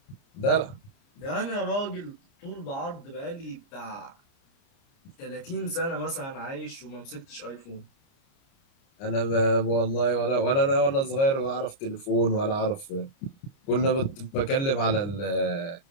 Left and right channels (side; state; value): right; late; 29 ms